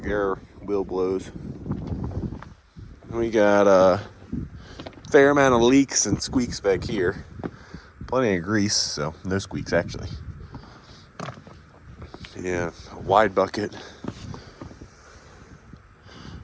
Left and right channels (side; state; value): both; identical; correlation 1.00